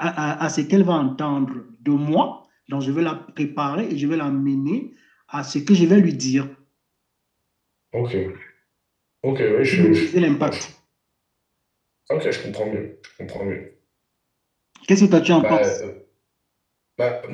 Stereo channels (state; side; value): identical; both; correlation 1.00